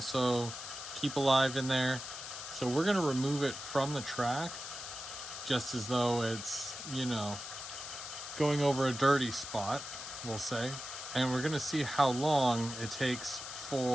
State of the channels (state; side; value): noise; left; hiss, 9 dB below the sound